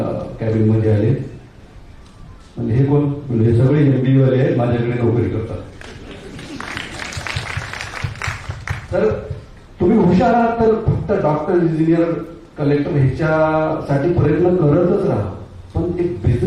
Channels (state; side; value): identical; both; correlation 1.00